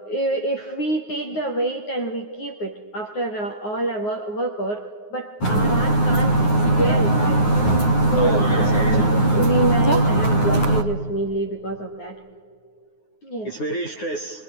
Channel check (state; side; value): late; right; 9.5 ms